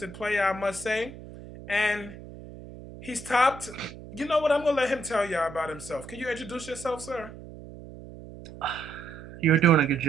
player, I must say, and he's topped. You know what? I'm gonna let him tell y'all about himself. Can you introduce yourself, sir? You were doing a good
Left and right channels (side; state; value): right; noise; hum, 15 dB below the sound